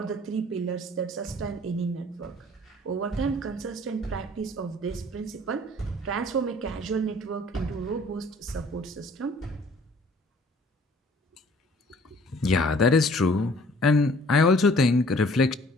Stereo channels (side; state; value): both; normal; correlation 0.55